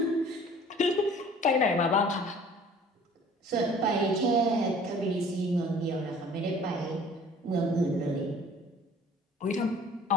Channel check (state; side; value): normal; both; correlation 0.50